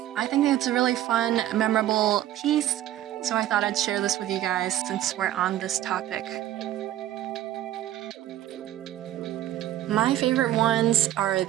I think it's a really fun, memorable piece, so I thought I'd share this with you guys since we're on this topic. My favorite ones are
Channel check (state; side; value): quieter; left; 13.2 dB